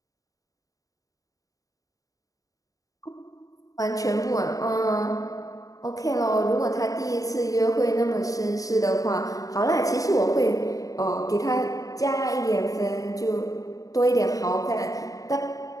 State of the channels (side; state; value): right; late; 0.17 ms